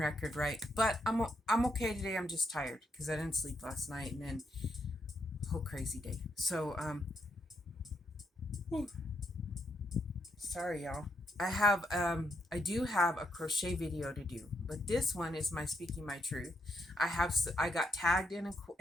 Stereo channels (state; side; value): normal; both; correlation 0.78